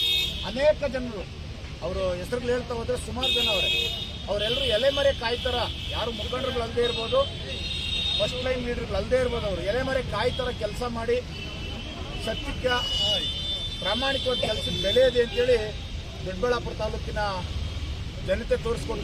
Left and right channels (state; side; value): identical; both; correlation 1.00